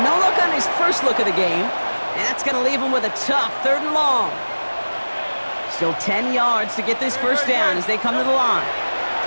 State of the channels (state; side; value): inverted; both; correlation -1.00